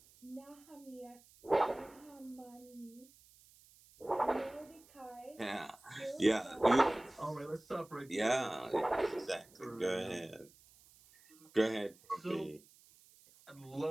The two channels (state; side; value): noise; right; hiss, 26 dB below the sound